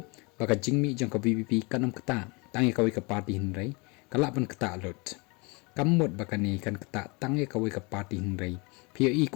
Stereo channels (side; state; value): right; quieter; 29.0 dB